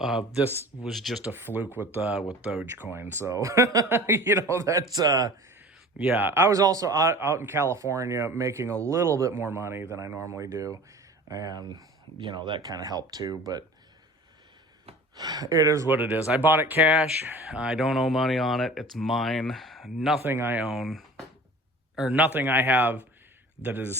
this was just a fluke with Dogecoin. So, that's, yeah. I was also out in California making a little bit more money than I normally do. And, that kind of helped too, but it is what it is. I bought it cash. I don't owe money on it. It's mine. Nothing I own, or nothing I have that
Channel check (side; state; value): both; normal; correlation 0.42